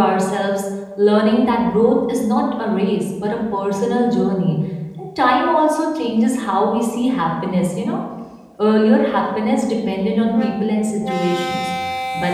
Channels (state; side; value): identical; both; correlation 1.00